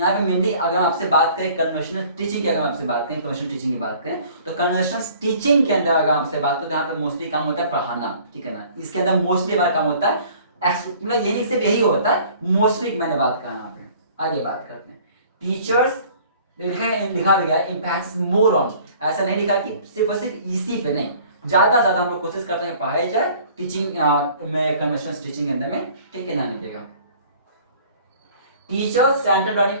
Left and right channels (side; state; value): both; inverted; correlation -0.52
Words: पे मेनली अगर आपसे बात करें कन्वेंशनल टीचिंग की, अगर आपसे बात करें कन्वेंशनल टीचिंग की बात करें तो कन्वेंशनल टीचिंग के अंदर अगर आपसे बात करें तो यहाँ पे मोस्टली काम होता है पढ़ाना, ठीक है ना, इसके अंदर मोस्टली हमारा काम होता है, मतलब ये नहीं सिर्फ यही होता है, मोस्टली मैंने बात कहा यहाँ पे। आगे बात करते हैं टीचर्स, लिखा भी गया एम्फैसिस मोर ऑन, ऐसा नहीं लिखा कि सिर्फ और सिर्फ इसी पे नहीं, ज्यादा से ज्यादा हम लोग कोशिश करते हैं पढ़ाई जाए टीचिंग में, कन्वेंशनल टीचिंग के अंदर में, ठीक है, ध्यान रखिएगा। टीचर्स सेंट्रल लर्निंग,